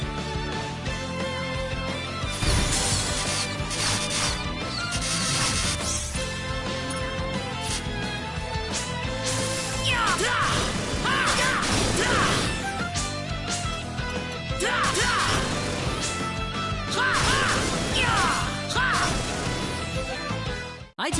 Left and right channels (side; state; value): both; identical; correlation 1.00